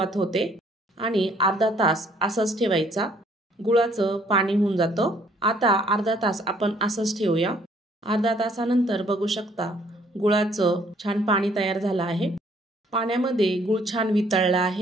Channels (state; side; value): normal; both; correlation 0.62